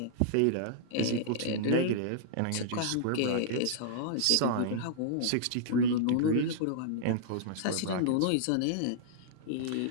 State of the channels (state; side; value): different; both; correlation -0.02